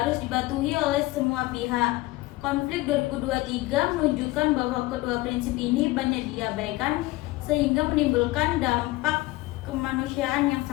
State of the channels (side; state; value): right; quieter; 19.6 dB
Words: dipatuhi oleh semua pihak. Konflik 2023 menunjukkan bahwa kedua prinsip ini banyak diabaikan sehingga menimbulkan dampak kemanusiaan yang